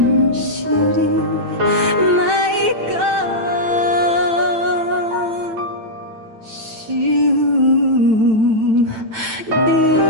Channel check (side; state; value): left; late; 9.0 ms